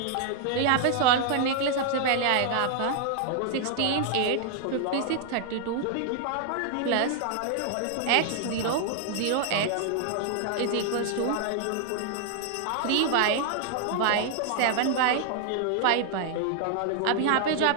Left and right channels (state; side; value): different; both; correlation 0.00